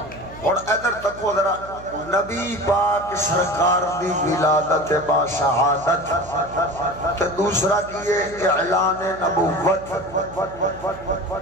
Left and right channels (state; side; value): noise; right; hum, 17 dB below the sound